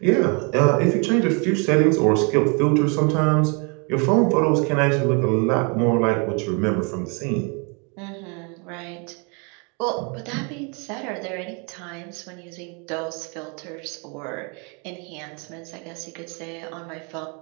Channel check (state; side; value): quieter; left; 34.1 dB